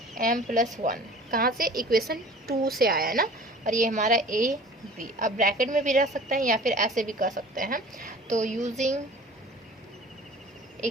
m प्लस 1, कहाँ से, इक्वेशन 2 से आया है ना, और ये हमारा a b, अब ब्रैकेट में भी रख सकते हैं या फिर ऐसे भी कर सकते हैं, तो यूजिंग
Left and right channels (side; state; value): both; normal; correlation 0.44